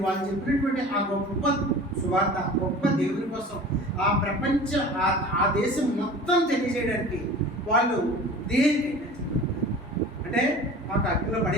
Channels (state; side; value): normal; both; correlation 0.40